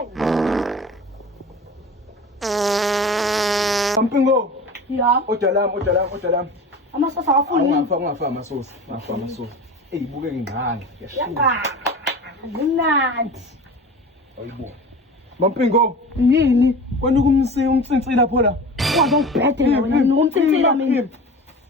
Mpingo. Ya. Odalam. Amasosa awafuni. Ungafa amasosa. Buke ngingane. Ya. Mnandi. Ayibo. Mpingo. Yini? Kwani umtsintsila lapho la. Kwazi ungibhede wena ngumtsintsila mina.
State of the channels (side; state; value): both; normal; correlation 0.35